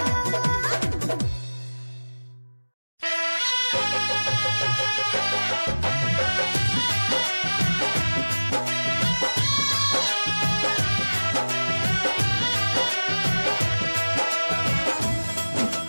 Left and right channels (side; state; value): both; inverted; correlation -1.00